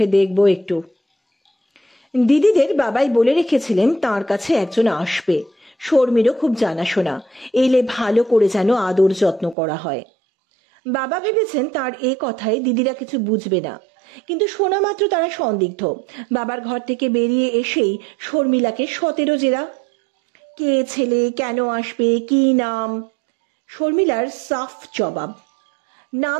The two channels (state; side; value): drops out; left; at 9.6 s